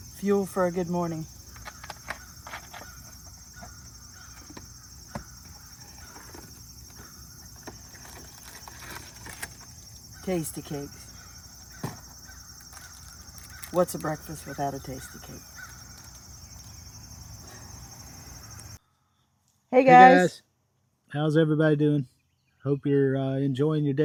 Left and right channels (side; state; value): both; identical; correlation 1.00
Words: Fuel for a good morning. Tasty cakes. What's a breakfast without a tasty cake? Hey Hey guys. guys, how's everybody doing? Hope you're enjoying your